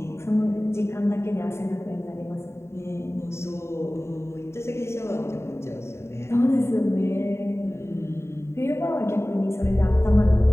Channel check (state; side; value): late; right; 0.13 ms